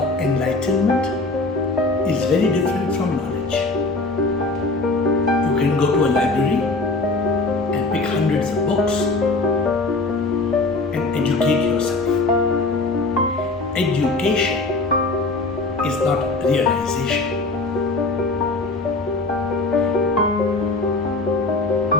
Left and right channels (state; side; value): quieter; right; 3.3 dB